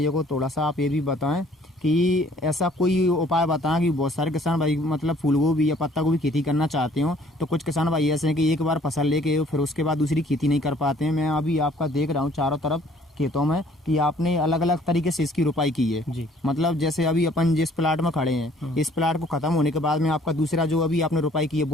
को थोड़ा सा आप ये भी बताएं कि ऐसा कोई उपाय बताएं कि बहुत सारे किसान भाई मतलब फूल गोभी या पत्ता गोभी खेती करना चाहते हो, तो कुछ किसान भाई ऐसे हैं कि एक बार फसल लेके फिर उसके बाद दूसरी खेती नहीं कर पाते हैं। मैं अभी आपका देख रहा हूँ चारों तरफ खेतों में कि आपने अलग अलग तरीके से इसकी रोपाई की है। जी। मतलब जैसे अभी अपन जिस प्लाट में खड़े हैं, इस प्लाट को खत्म होने के बाद में आपका दूसरा जो अभी आपने रोपाई की है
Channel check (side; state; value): both; normal; correlation 0.58